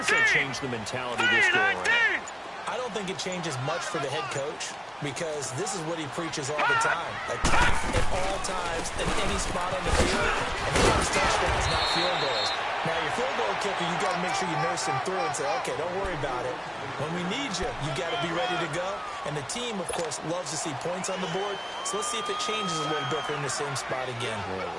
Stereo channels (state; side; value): identical; both; correlation 1.00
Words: that change the mentality this go around? I don't think it changes much for the head coach because this is what he preaches all the time. Attack at all times in any spot on the field, and he wants touchdowns, not field goals. Now, your field goal kicker, you got to make sure you nurse him through and say, okay, don't worry about it. When we need you, you got to be ready to go. And the team, of course, loves to see points on the board. So let's see if it changes a little bit. They're in the same spot again. Well,